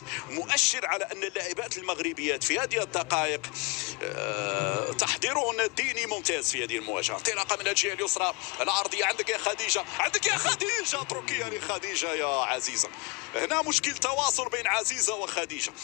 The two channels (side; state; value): right; quieter; 30.7 dB